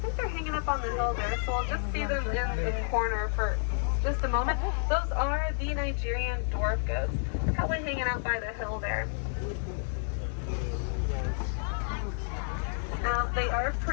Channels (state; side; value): silent; right; 58 dB below the other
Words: think they're hanging up on the hill there, so we'll just see them in the corner for just a moment. Those are the Nigerian dwarf goats, probably hanging out by the hill there. Now, they are